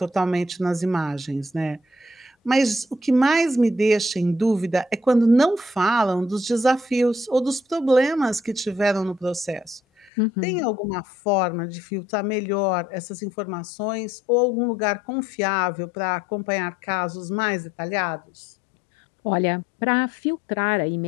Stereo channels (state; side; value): drops out; right; at 10.1 s